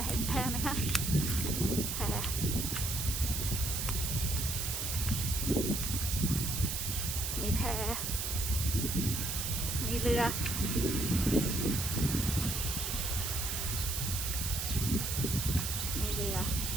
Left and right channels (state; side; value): noise; right; hiss, 2 dB below the sound